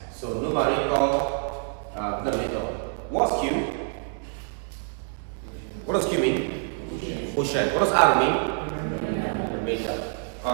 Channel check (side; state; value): left; silent; 56 dB below the other